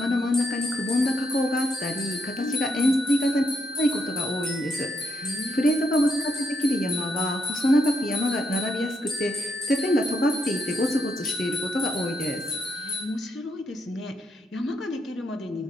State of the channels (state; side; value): normal; both; correlation 0.79